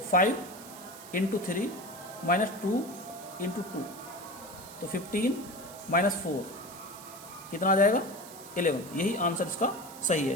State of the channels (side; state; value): right; noise; hiss, 17 dB below the sound